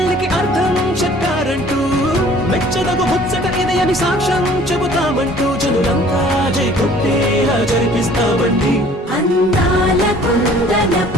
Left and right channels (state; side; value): normal; both; correlation 0.53